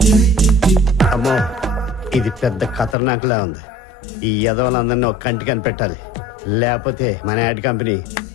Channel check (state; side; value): drops out; right; at 3.0 s